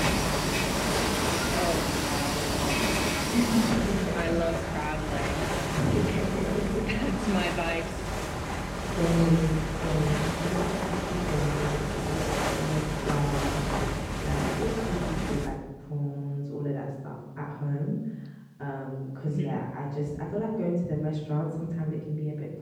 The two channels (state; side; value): identical; both; correlation 1.00